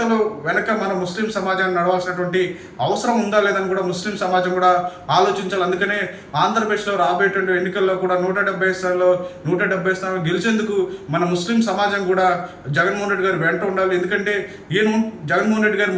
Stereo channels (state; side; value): identical; both; correlation 1.00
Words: వెనక మన ముస్లిం సమాజాన్ని నడవాల్సినటువంటి అవసరం ఉందా లేదని కూడా ముస్లిం సమాజం కూడా ఆలోచించాలి. అందుకనే ఆంధ్రప్రదేశ్లో రాబోయేటువంటి ఎన్నికల్లో కూడా 170 స్థానాలు గెలిచేందుకు మన ముస్లిం సమాజం కూడా జగన్మోహన్ రెడ్డి గారు వెంట ఉండాలి. ఎందుకంటే జగన్మోహన్ రెడ్డి గారు